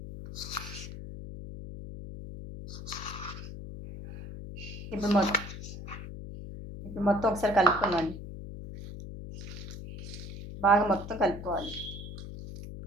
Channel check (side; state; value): left; noise; hum, 10 dB below the sound